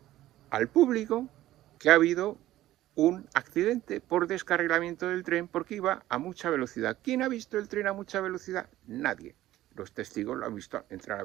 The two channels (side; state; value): left; quieter; 14.8 dB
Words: al público que ha habido un accidente por descarrilamiento del tren porque iba a mucha velocidad. ¿Quién ha visto el tren a mucha velocidad? Nadie. Los testigos lo han visto entrar a